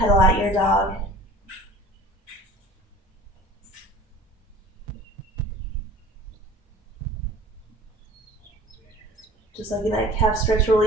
out your dog. Just like in that calf stretch,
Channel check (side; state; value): both; normal; correlation 0.44